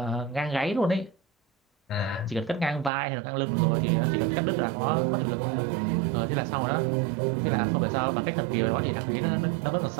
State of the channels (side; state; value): left; drops out; at 2.9 s